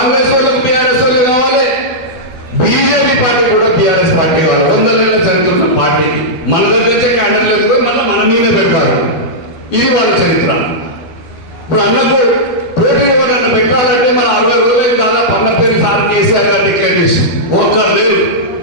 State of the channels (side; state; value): right; late; 13 ms